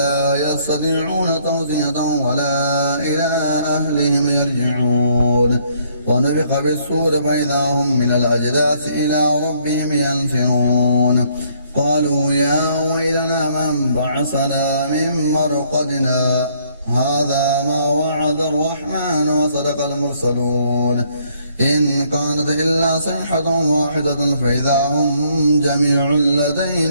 يستطيعون توصية ولا إلى أهلهم يرجعون ونفخ بالصور فإذا هم من الأجداث إلى ربهم ينسلون قالوا يا ويلنا من بعثنا من مرقدنا هذا ما وعد الرحمن وصدق المرسلون إن كانت إلا صيحة واحدة فإذا هم جميع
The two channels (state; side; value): inverted; both; correlation -0.66